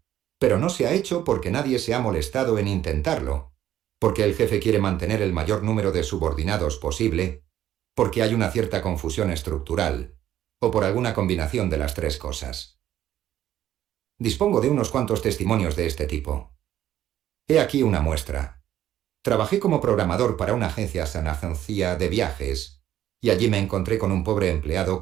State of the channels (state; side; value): quieter; left; 12.0 dB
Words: pero no se ha hecho porque nadie se ha molestado en intentarlo, porque el jefe quiere mantener el mayor número de subordinados posible, porque hay una cierta confusión estructural, o por alguna combinación de las tres cosas. Dispongo de unos cuantos testimonios de este tipo. He aquí una muestra. Trabajé como programador para una agencia sanagencia de viajes, y allí me encontré con un pobre empleado